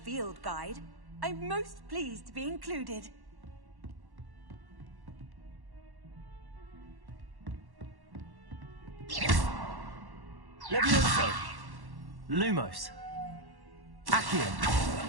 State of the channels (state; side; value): late; left; 1.1 ms